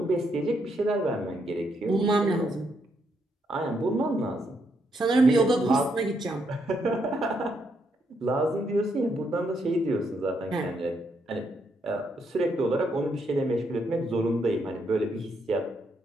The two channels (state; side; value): normal; both; correlation 0.77